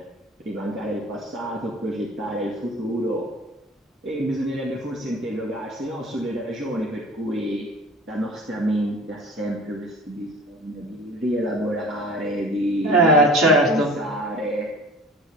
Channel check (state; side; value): normal; both; correlation 0.43